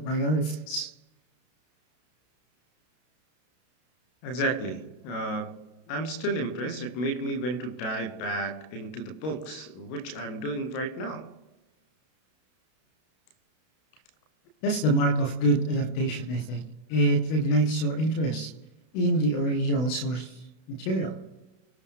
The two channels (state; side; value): late; right; 32 ms